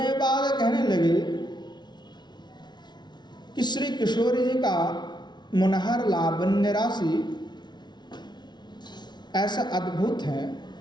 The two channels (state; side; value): late; right; 0.20 ms